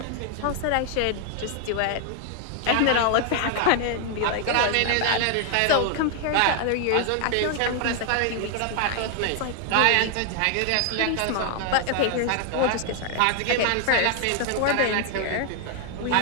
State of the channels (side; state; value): both; different; correlation 0.00